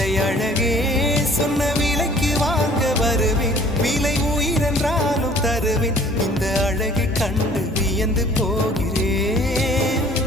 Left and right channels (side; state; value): both; normal; correlation 0.53